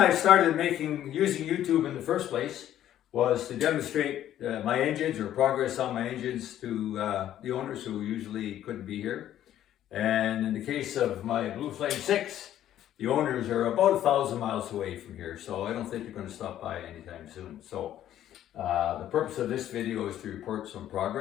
started using YouTube in the first place was to demonstrate my engines or progress on my engines to the owners who usually couldn't be here. And in the case of my Blue Flame 6, the owners are about 1,000 miles away from here, so I don't think they're going to stop by anytime soon. So the purpose of this video is to report some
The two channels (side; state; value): right; quieter; 11.8 dB